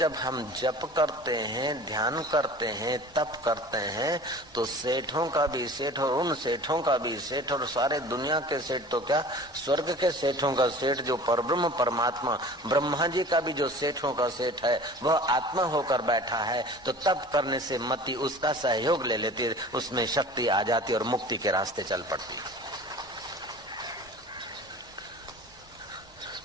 हम जप करते हैं, ध्यान करते हैं, तप करते हैं, तो सेठों का भी सेठ और उन सेठों का भी सेठ और सारे दुनिया के सेठ तो क्या, स्वर्ग के सेठों का सेठ जो परब्रह्म परमात्मा ब्रह्मा जी का भी जो सेठों का सेठ है वह आत्मा होकर बैठा है। तो तप करने से मति उसका सहयोग ले लेती है, उसमें शक्ति आ जाती है और मुक्ति के रास्ते चल पड़ती है।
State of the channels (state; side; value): normal; both; correlation 0.42